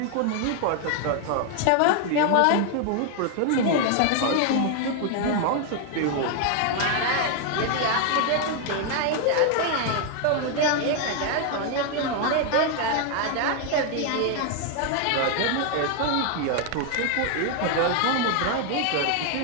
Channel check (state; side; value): different; both; correlation 0.00